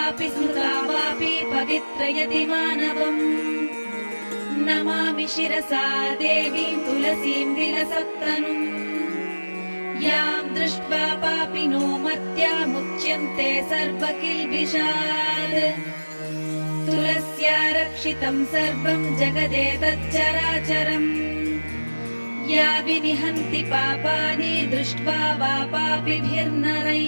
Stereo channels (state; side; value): inverted; both; correlation -1.00